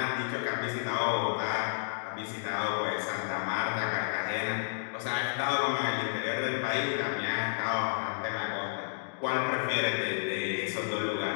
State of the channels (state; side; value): silent; right; digital silence